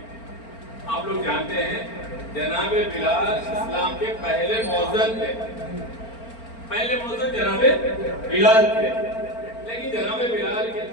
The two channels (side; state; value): right; late; 4.4 ms